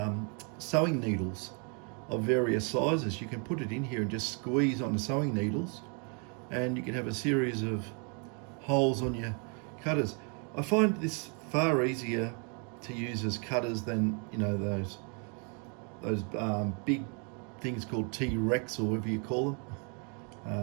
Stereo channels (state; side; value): quieter; left; 37.5 dB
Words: sewing needles of various sizes. You can put it in here and just squeeze on the sewing needles, and you can have a series of holes on your cutters. I find this far easier to use as cutters than those big things called T-Rex or whatever you call